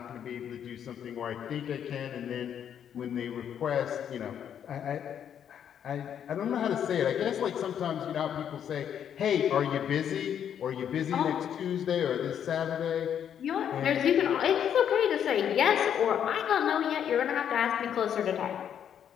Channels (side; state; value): right; quieter; 9.0 dB